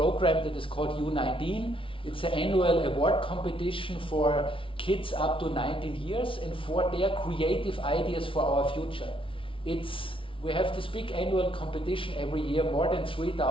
that is called U19. It's an annual award competition for kids up to 19 years and for their creative ideas for our future. We have this big annual competition every year, more than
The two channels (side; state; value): right; late; 0.25 ms